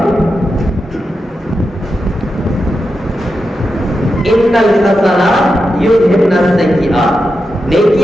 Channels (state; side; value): normal; both; correlation 0.88